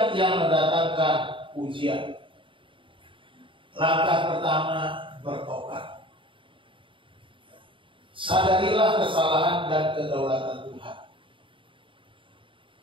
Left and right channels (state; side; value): late; left; 0.25 ms